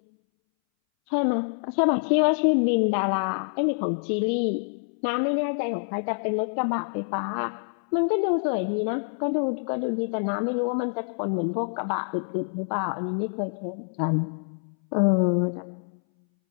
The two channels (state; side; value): silent; right; 61 dB below the other